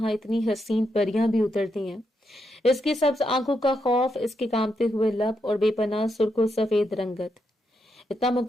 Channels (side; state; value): both; normal; correlation 0.82